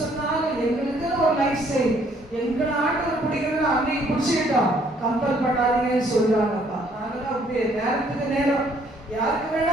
சொன்னாலும் எங்களுக்குன்னு ஒரு லைஃப் ஸ்டைல், எங்களை ஆண்டவர் பிடிக்கிறதுன்னு அன்னைக்கு பிடிச்சிக்கிட்டோம், கம்பல் பண்ணாதீங்கன்னு சொல்றாங்கப்பா. நாங்களாம் அப்படியே நேரத்துக்கு நேரம் யாருக்கு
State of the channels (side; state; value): both; normal; correlation 0.64